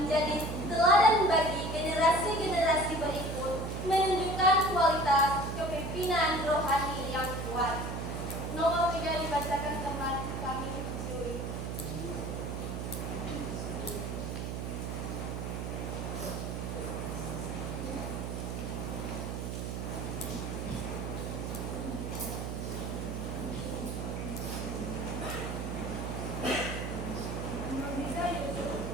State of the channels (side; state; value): right; noise; hum, 4 dB below the sound